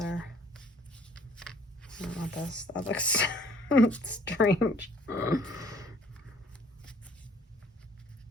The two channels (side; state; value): both; normal; correlation 0.57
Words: I don't want this. That looks strange.